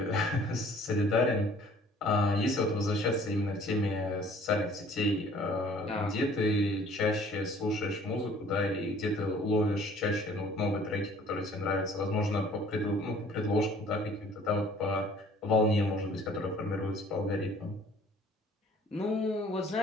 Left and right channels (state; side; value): normal; both; correlation 0.54